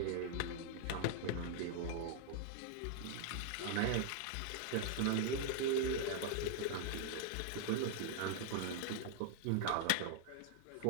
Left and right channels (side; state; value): both; different; correlation 0.00